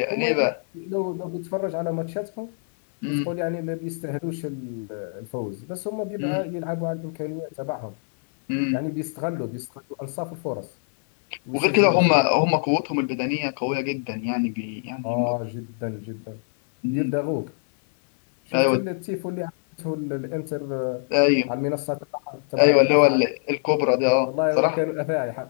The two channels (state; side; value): silent; right; 61 dB below the other